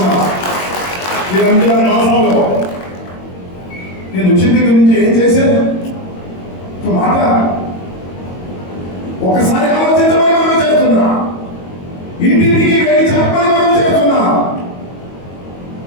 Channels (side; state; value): right; late; 22 ms